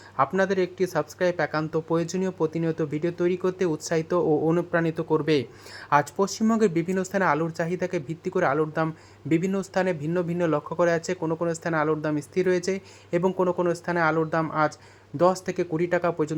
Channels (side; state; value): both; identical; correlation 1.00